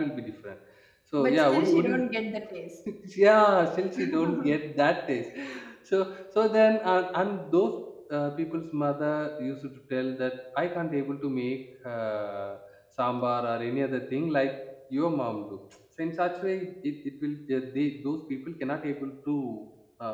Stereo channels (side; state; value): both; identical; correlation 1.00